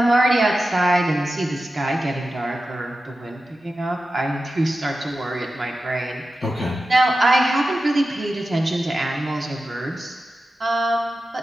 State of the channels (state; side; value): normal; both; correlation 0.93